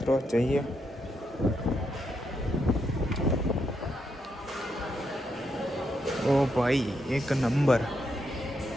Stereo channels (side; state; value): both; normal; correlation 0.80